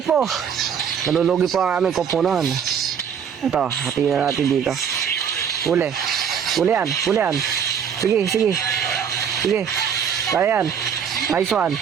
Nalulugi po ang aming koponan. Ito, hatiin na natin dito. Huli yan. Sige. Kaya yan. Nice one.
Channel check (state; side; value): quieter; left; 7.6 dB